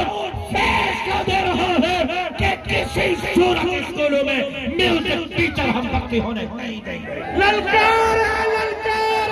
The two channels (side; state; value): both; identical; correlation 1.00